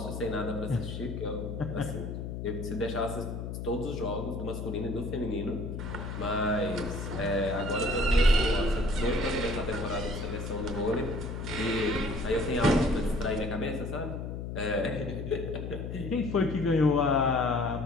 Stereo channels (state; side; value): noise; left; hum, 6 dB below the sound